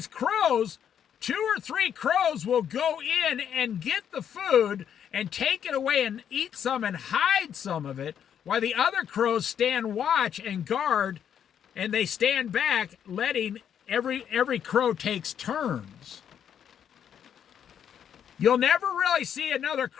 crows, 2 or 3 crows will go in and get the food and take it away and eat some and hide some of it, while the other crows stand watch and guard, and they stand back, letting every crow takes turns. You'll never really see a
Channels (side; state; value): right; quieter; 8.8 dB